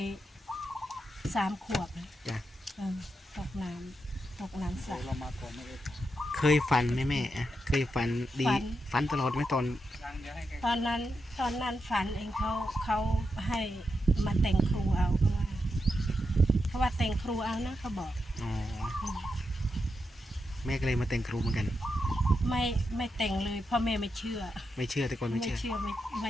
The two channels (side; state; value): both; normal; correlation 0.86